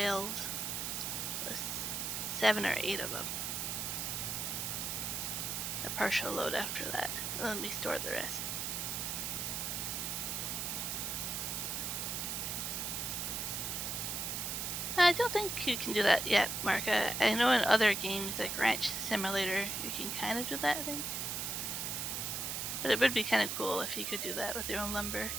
plus 7 or 8 of them. A partial load after that. And let me store the rest. I don't think you can do that yet, Mark. I know in other games like Ranch Simulator you can kind of do that, I think. But it would be kind of cool if you could do that with your own lumber.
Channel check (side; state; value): right; noise; hiss, 2 dB below the sound